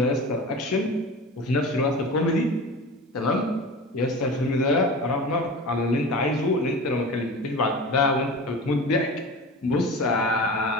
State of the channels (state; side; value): normal; both; correlation 0.33